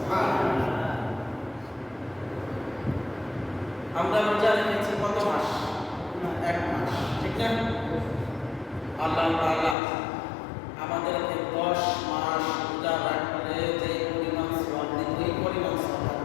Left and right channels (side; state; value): right; drops out; at 9.8 s